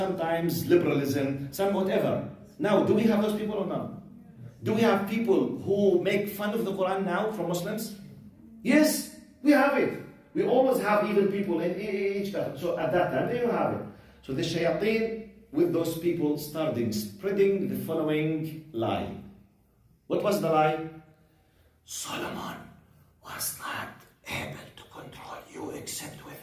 liberalism, some whatever. Now, do we have those people or not? Do we have people who make fun of the Quran now from Muslims? Yes, we have it. We always have evil people in each country. So at that time, they have it. So the shayateen with those people started spreading the following lie. What was the lie? Solomon was not able to control you except with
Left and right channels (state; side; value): identical; both; correlation 1.00